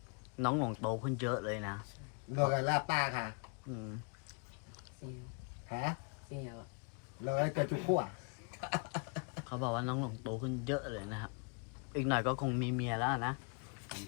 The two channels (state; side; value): quieter; right; 35.2 dB